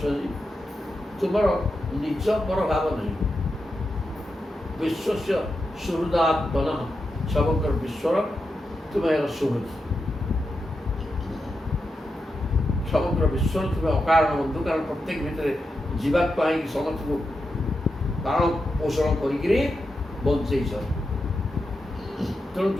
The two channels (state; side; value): normal; both; correlation 0.88